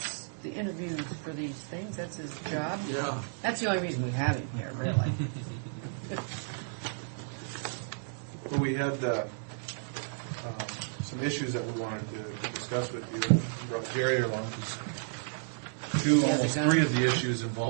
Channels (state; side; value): silent; left; digital silence